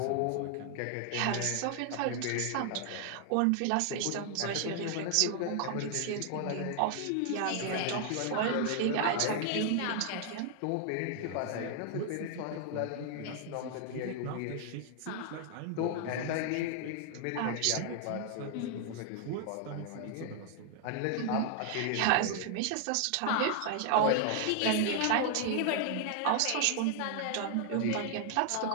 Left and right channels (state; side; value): different; both; correlation 0.00